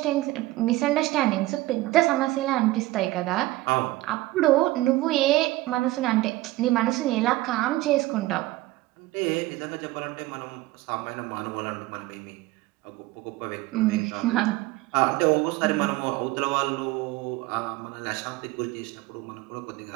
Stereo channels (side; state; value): left; quieter; 18.4 dB